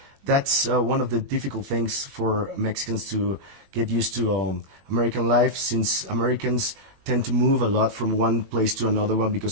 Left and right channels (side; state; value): left; late; 21 ms